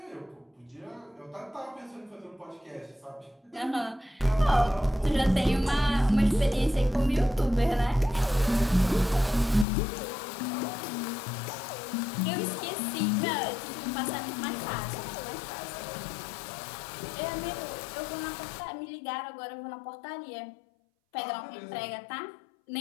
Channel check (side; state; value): right; drops out; at 9.7 s